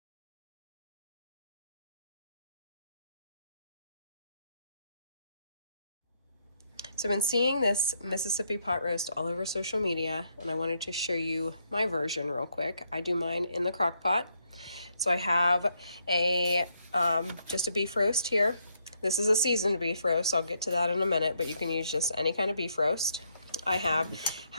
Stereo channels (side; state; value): both; inverted; correlation -0.75